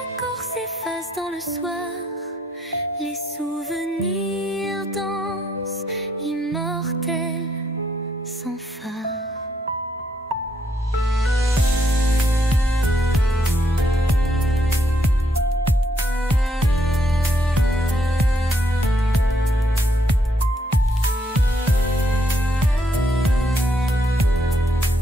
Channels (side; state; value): both; normal; correlation 0.73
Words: s'efface dans le soir, les souvenirs dansent, immortels, sans phare.